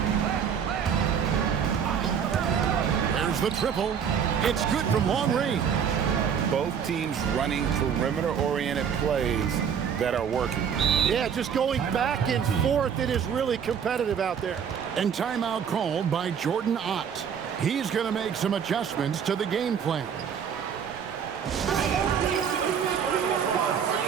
There's the triple. It's good from long range. Both teams running perimeter-oriented plays that are working. Yeah, just going back and forth. It is really competitive out there. And timeout called by Jordan Ott. He's going to make some adjustments to the game plan.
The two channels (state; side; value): quieter; left; 7.6 dB